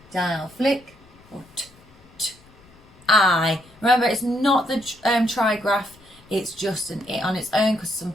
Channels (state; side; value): noise; left; rumble, 27 dB below the sound